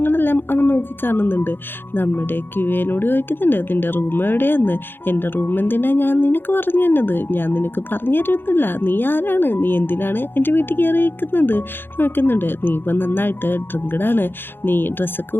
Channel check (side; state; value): right; late; 0.10 ms